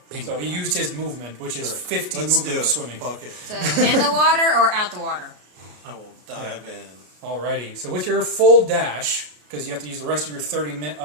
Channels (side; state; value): left; late; 33 ms